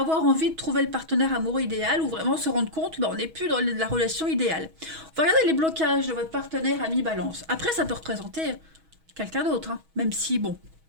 envie de trouver le partenaire amoureux idéal ou vraiment se rendre compte qu'on n'est plus dans la relation idéale. On va regarder les blocages de votre partenaire ami balance. Après, ça peut représenter quelqu'un d'autre, hein, même si, bon,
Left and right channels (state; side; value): late; left; 6.2 ms